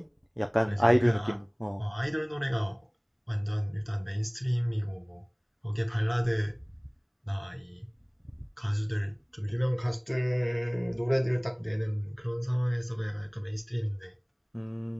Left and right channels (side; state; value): both; identical; correlation 1.00